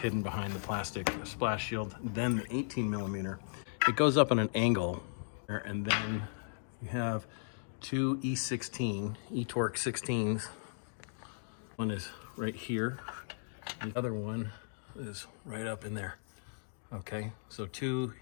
behind the plastic splash shield. Then the 18mm, it goes up on an angle, and then you have 2 E16, E-torx 16s. One is right here. The other one is right up in there. Okay, so two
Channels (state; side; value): silent; right; digital silence